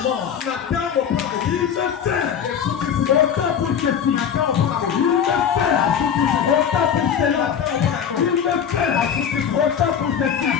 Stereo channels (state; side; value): quieter; right; 8.0 dB